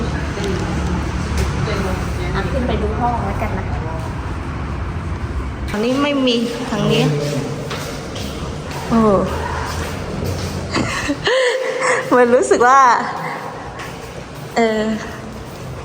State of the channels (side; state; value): both; identical; correlation 1.00